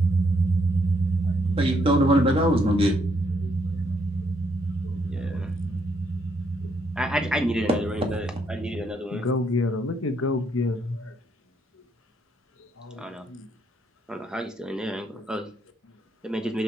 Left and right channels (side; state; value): both; normal; correlation 0.73